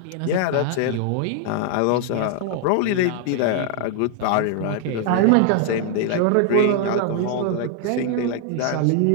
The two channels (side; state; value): both; different; correlation 0.00